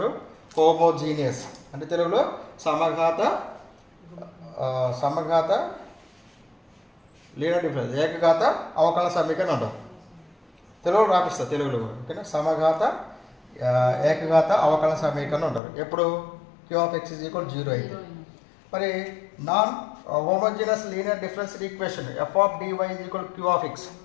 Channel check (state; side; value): drops out; right; at 15.6 s